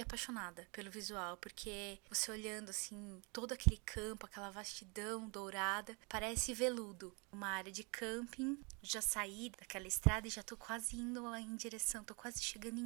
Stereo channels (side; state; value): left; quieter; 31.6 dB